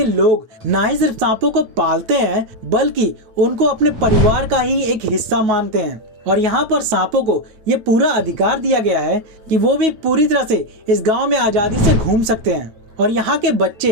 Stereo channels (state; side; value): late; left; 9.3 ms